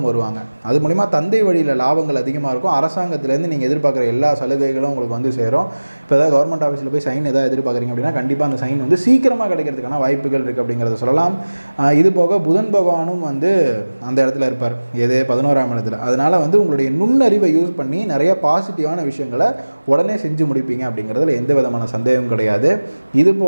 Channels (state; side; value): inverted; both; correlation -1.00